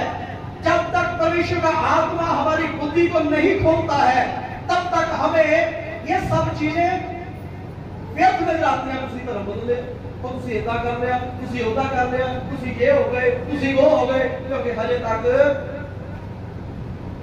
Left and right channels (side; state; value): both; identical; correlation 1.00